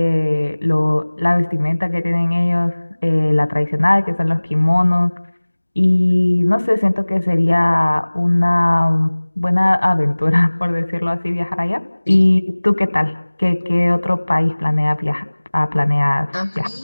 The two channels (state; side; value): inverted; both; correlation -1.00